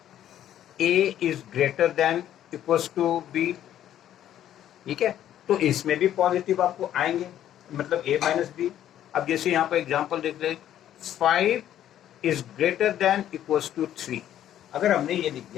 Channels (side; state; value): right; quieter; 11.4 dB